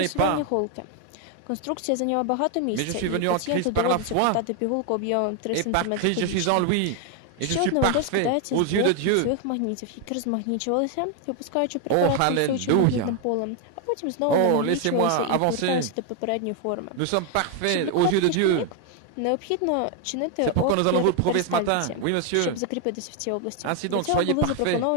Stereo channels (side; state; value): both; different; correlation 0.01